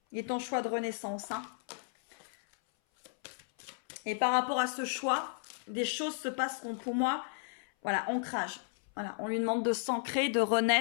Il est ton choix de renaissance. Hein. Et par rapport à ce choix, des choses se passeront pour moi. Voilà, ancrage. Voilà, on lui demande de s'ancrer, de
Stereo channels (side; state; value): right; silent; 55 dB below the other